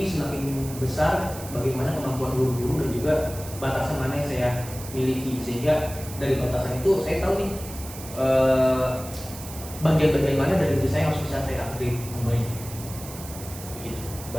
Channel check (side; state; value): right; noise; hiss, 13 dB below the sound